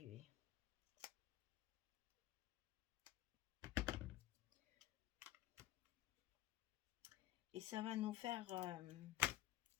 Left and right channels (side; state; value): right; quieter; 13.8 dB